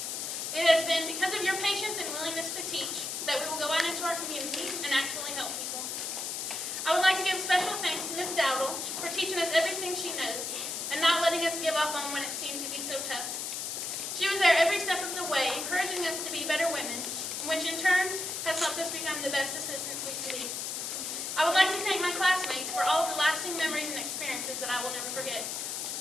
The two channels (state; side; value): noise; left; hiss, 4 dB below the sound